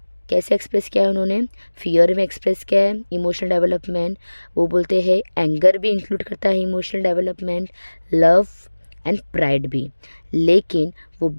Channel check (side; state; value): both; inverted; correlation -1.00